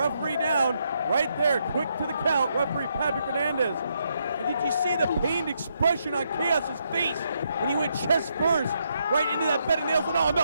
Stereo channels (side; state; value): both; inverted; correlation -0.77